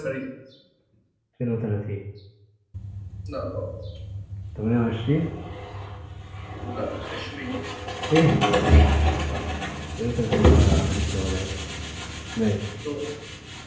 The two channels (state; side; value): identical; both; correlation 1.00